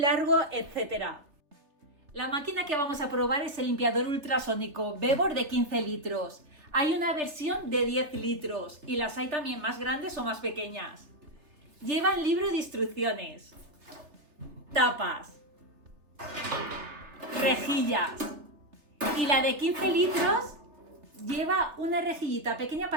etcétera. La máquina que vamos a probar es el limpiador ultrasónico Bebor de 15 litros. Hay una versión de 10 litros y las hay también más grandes o más pequeñas. Llevan libro de instrucciones, tapas, rejillas y la de 15 litros lleva una rejillita pequeña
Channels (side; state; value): left; late; 3.3 ms